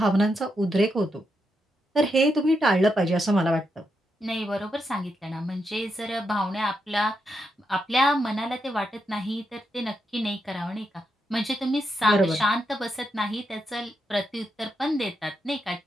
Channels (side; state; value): both; normal; correlation 0.83